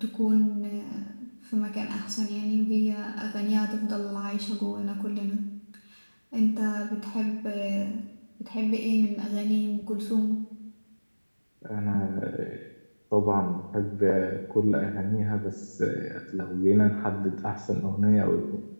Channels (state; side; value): inverted; both; correlation -1.00